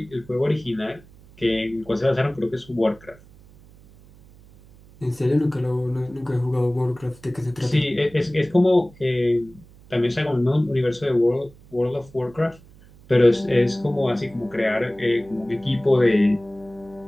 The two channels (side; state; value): right; noise; hum, 24 dB below the sound